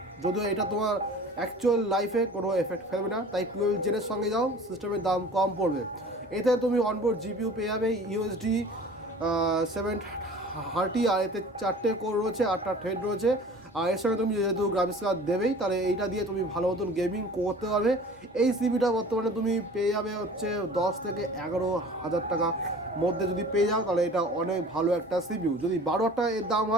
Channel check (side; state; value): both; normal; correlation 0.44